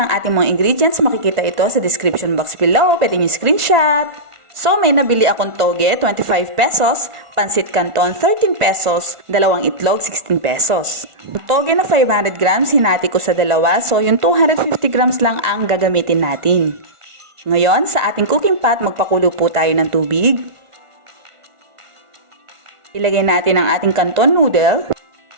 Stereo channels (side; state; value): left; late; 1.4 ms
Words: ating mga ingredients, makikita ito sa description box below. Pwede nyo screenshot. So, may nabili akong toge, 25 pesos, pancit canton, 13 pesos, dalawang itlog, 16 pesos. Toge na 500 grams, hinati ko sa dalawa, so yung 250 grams lang ang gagamitin natin. Ngayon, sa ating cooking pot, magpakulo po tayo ng tubig. Ilagay natin ang ating canton noodle.